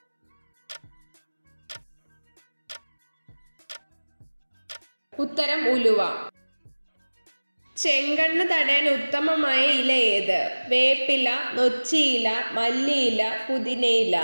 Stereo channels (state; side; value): inverted; both; correlation -1.00